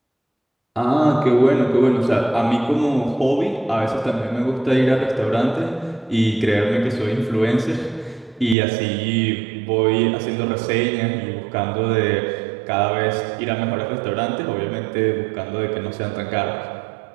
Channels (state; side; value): drops out; left; at 8.6 s